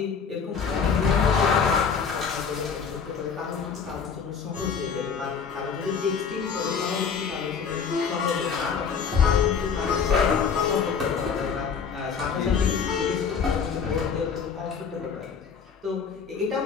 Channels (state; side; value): quieter; right; 6.2 dB